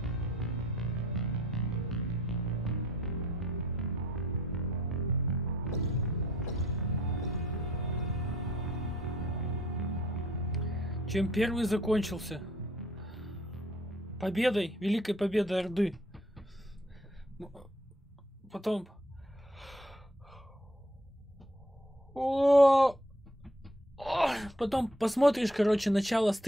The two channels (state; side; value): normal; both; correlation 0.62